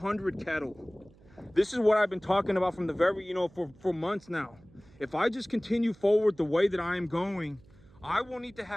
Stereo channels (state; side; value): noise; right; hum, 26 dB below the sound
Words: cattle. This is what I've been talking about from the very, for months now. If I just continue forward the way that I am going, I will need to